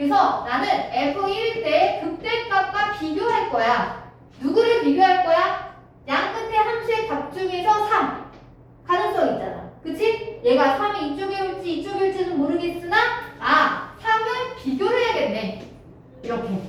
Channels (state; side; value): identical; both; correlation 1.00